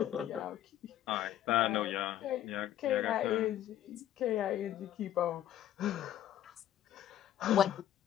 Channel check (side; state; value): right; quieter; 11.9 dB